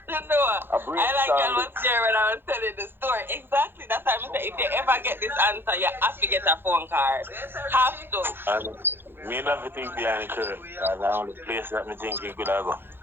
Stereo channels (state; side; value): late; left; 0.10 ms